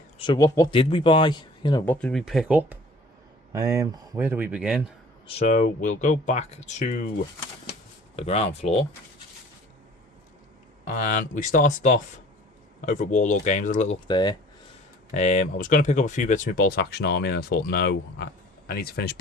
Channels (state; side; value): normal; both; correlation 0.49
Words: so what did we buy? You know, what did we pick up? Where do we begin? So we'll go back to the ground floor, and we started off over at Warlord Games. A little look there. I was going to pick up a few bits of my Bolt Action Army, and I thought no. I need to finish